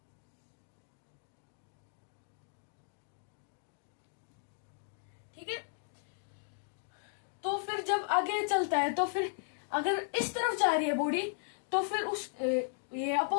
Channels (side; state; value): right; silent; digital silence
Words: ठीक है, तो फिर जब आगे चलता है तो फिर अगर इस तरफ जा रही है बॉडी तो फिर उस ये